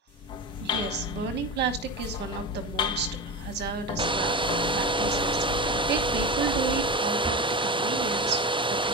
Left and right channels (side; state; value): both; normal; correlation 0.24